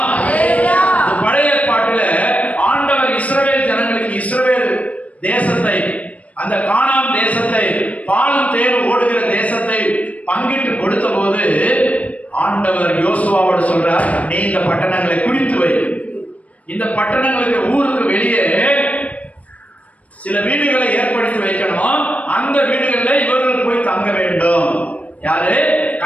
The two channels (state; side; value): late; right; 0.067 ms